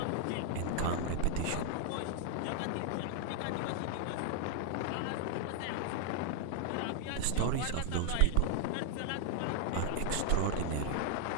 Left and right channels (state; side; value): different; both; correlation 0.00